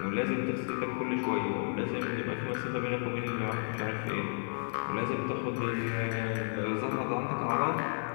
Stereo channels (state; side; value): silent; right; digital silence